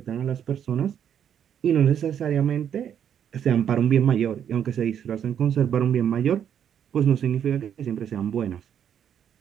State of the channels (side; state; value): left; quieter; 8.9 dB